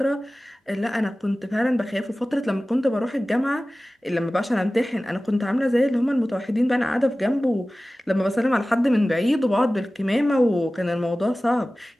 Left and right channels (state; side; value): normal; both; correlation 0.97